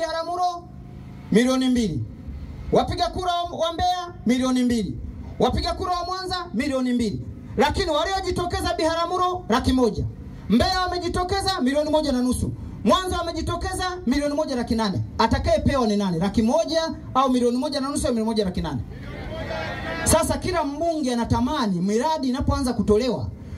milioni 2. Wapiga kura wa Mbeya milioni 2. Wapiga kura wa Mwanza milioni 2. Lakini waliojitokeza Biharamulo 100,000. Mbeya wamejitokeza milioni 1.5. Mwanza wamejitokeza milioni 1.8. Atakayepewa ni nani? 100,000 au milioni 1.5 au milioni 1.8? Sasa kila mbunge anatamani miradi inapoanza kutolewa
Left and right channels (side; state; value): both; identical; correlation 1.00